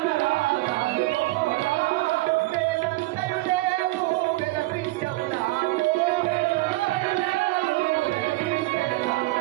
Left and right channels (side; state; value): left; quieter; 20.3 dB